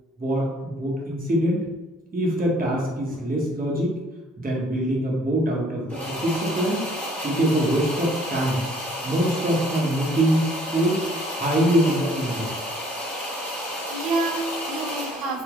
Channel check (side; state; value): both; normal; correlation 0.60